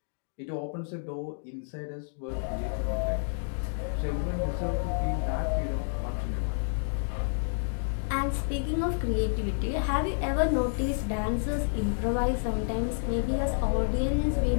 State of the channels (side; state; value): right; silent; digital silence